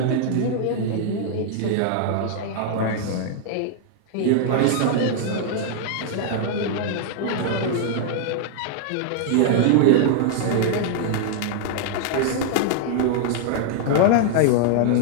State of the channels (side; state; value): both; different; correlation 0.00